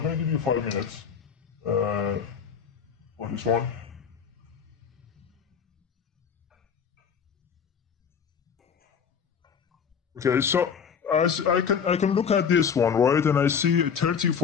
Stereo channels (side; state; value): right; quieter; 6.9 dB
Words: going to give you 5 minutes on this one. Okay, so as I can look at this one, right, and I see 30,